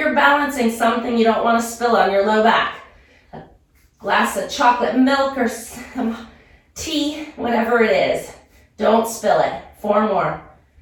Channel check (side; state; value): both; identical; correlation 1.00